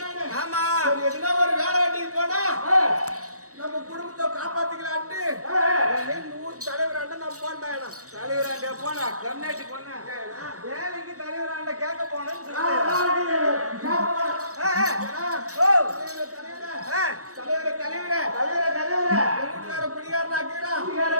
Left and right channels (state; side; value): late; left; 0.66 ms